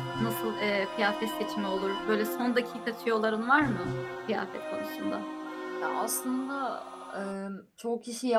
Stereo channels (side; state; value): both; identical; correlation 1.00